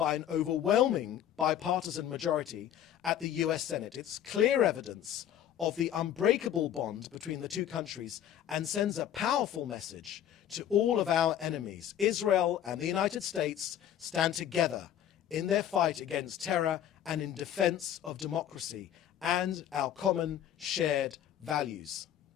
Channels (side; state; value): right; quieter; 10.4 dB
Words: an overwhelming bipartisan majority at the US Senate. It's clear evidence of the unbreakable bond between the two countries and sends a powerful message to all of our enemies. Israel and the United States stand together in their fight against terror and in defense of democracy and our common shared values.